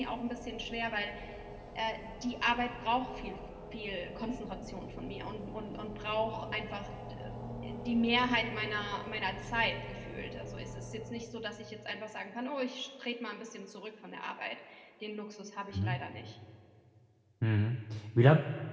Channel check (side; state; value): both; identical; correlation 1.00